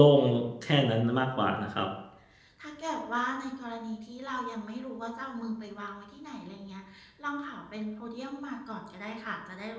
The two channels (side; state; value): both; identical; correlation 1.00